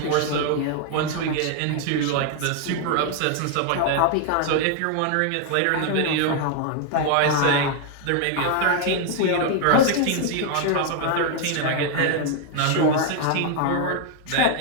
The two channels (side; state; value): both; different; correlation 0.00